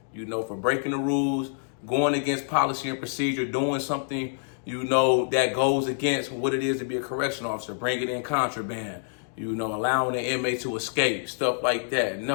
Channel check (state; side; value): silent; right; digital silence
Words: for breaking the rules, going against policy and procedure, doing something, that goes against what it is to be a correctional officer, bringing in contraband, allowing the inmate to escape, stuff like that.